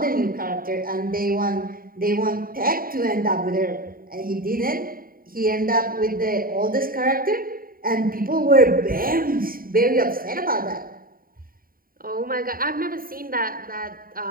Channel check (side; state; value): left; late; 0.42 ms